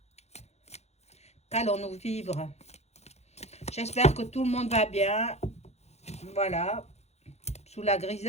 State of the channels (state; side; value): late; right; 0.31 ms